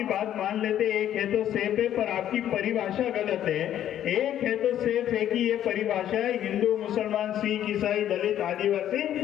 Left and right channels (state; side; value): quieter; right; 11.1 dB